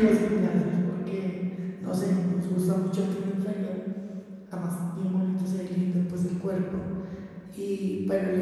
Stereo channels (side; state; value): both; identical; correlation 1.00